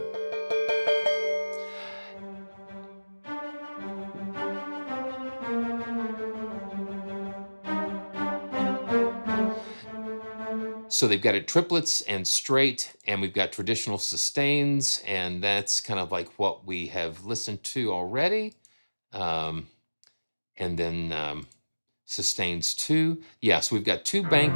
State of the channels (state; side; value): inverted; both; correlation -1.00